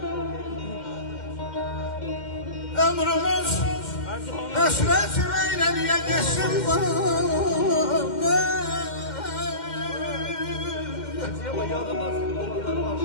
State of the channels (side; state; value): right; late; 2.1 ms